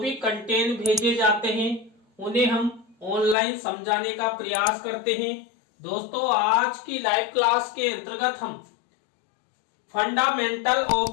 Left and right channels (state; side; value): drops out; right; at 3.4 s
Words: कंटेंट भेजे जाते हैं उन्हें हम ऑनलाइन समझाने का प्रयास करते हैं। दोस्तों, आज की लाइव क्लास के अंतर्गत हम fundamental of